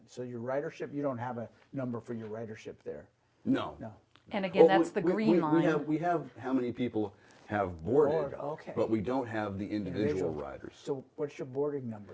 So your ridership, you don't have a number for your ridership there. No. No. And again, that's the Green We Line. have how many people have boarded, okay. but we don't have the individual riders. So what's your boarding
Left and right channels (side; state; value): both; identical; correlation 1.00